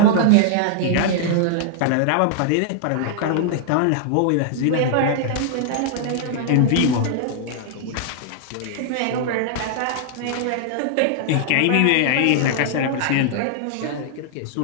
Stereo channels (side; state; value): both; different; correlation -0.01